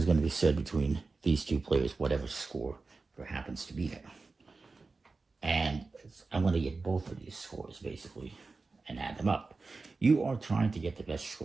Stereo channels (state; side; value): quieter; left; 3.9 dB